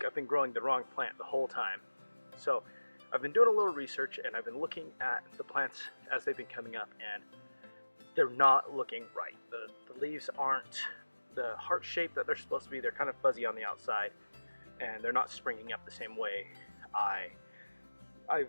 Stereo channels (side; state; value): both; inverted; correlation -1.00